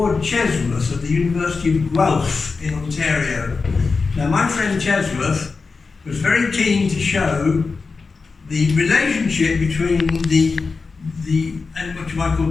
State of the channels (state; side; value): quieter; right; 4.5 dB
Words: Chesworth at the University of Guelph in Ontario. Now, my friend Chesworth was very keen to show the relationship between the what you might call